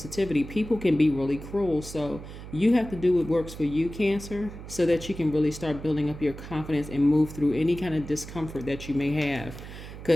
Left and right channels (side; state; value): right; noise; hum, 12 dB below the sound